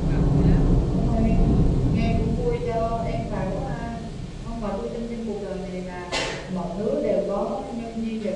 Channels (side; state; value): both; identical; correlation 1.00